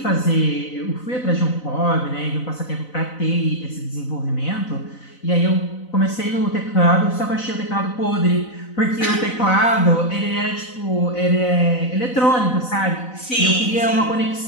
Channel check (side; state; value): right; late; 4.0 ms